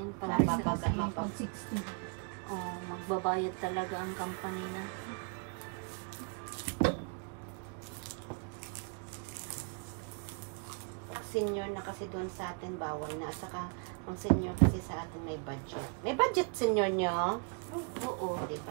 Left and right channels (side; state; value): left; quieter; 37.9 dB